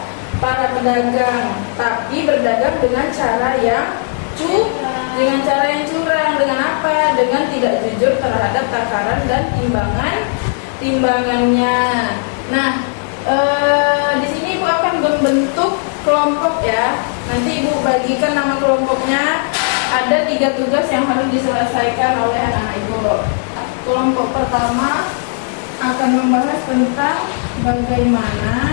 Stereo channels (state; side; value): silent; right; 57 dB below the other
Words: tapi berdagang dengan cara yang curang. Dengan apa? Dengan tidak jujur terhadap takaran dan timbangannya. Nah, di sini Ibu akan membentuk kelompok ya. Nanti Ibu bagikan nama kelompoknya. Ada 3 tugas yang harus diselesaikan oleh anak-anak Ibu. Kelompok pertama akan membahas tentang